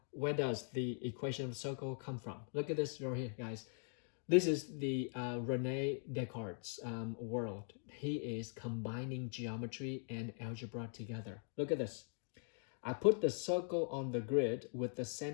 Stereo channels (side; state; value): right; silent; 50 dB below the other